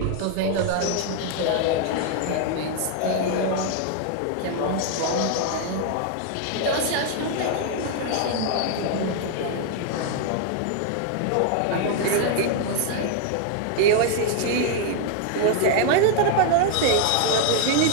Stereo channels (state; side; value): different; both; correlation 0.00